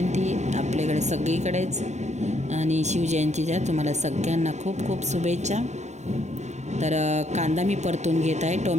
आपल्याकडे सगळीकडेच, आणि शिवजयंतीच्या तुम्हाला सगळ्यांना खूप खूप शुभेच्छा। तर कांदा मी परतून घेत आहे।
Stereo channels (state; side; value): late; left; 0.33 ms